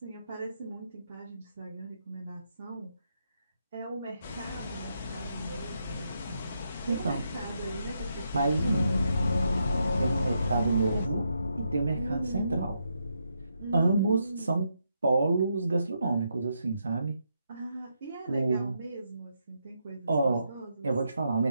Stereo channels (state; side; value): inverted; both; correlation -0.80